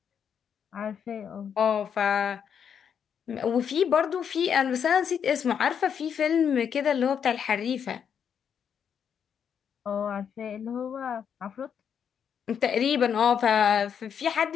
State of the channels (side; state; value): right; quieter; 7.8 dB